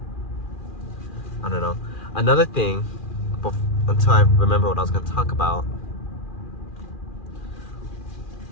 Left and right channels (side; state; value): right; late; 2.4 ms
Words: I don't know. Another thing, until I remember what I was going to talk about,